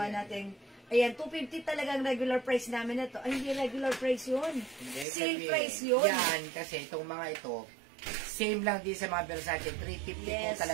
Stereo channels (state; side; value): drops out; left; at 5.1 s